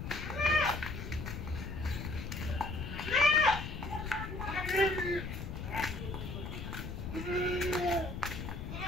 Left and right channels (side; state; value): left; noise; rumble, 6 dB below the sound